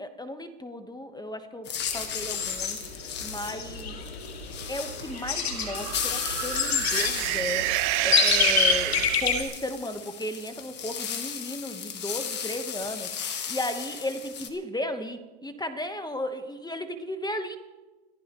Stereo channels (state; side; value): normal; both; correlation 0.11